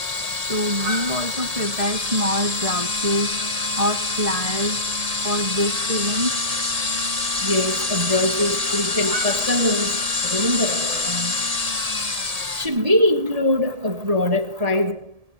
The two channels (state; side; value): late; left; 1.7 ms